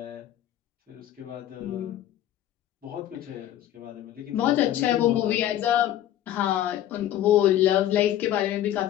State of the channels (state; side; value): quieter; right; 12.2 dB